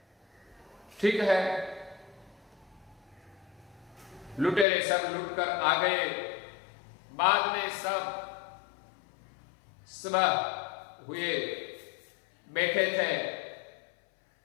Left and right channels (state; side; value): drops out; right; at 4.7 s